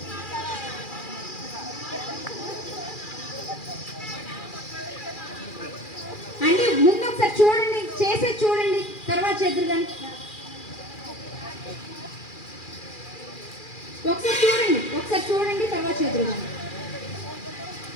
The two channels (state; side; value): late; right; 2.4 ms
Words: అంటే ముందు ఒకసారి చూడండి, చేసేది చూడండి, తర్వాత చేద్దరు కానీ. ఒకసారి చూడండి, తర్వాత చేద్దరు కానీ.